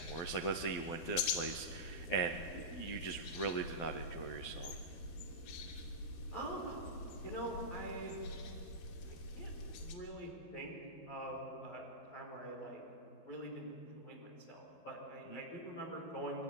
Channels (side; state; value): right; late; 12 ms